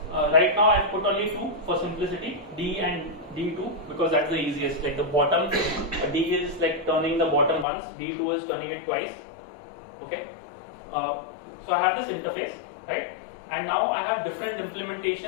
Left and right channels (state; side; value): drops out; right; at 7.7 s